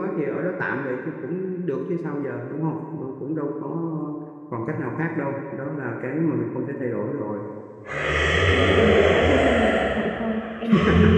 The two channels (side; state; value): both; identical; correlation 1.00